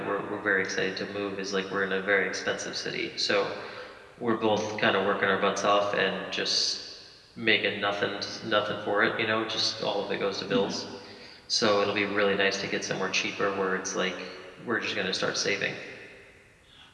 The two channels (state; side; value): identical; both; correlation 1.00